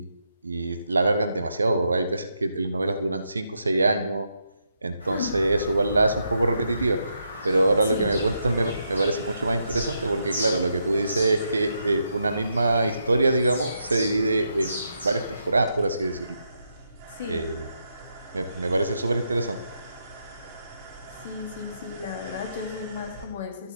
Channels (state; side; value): inverted; both; correlation -0.81